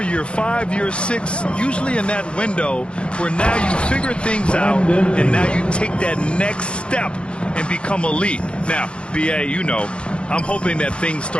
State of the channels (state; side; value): late; right; 0.057 ms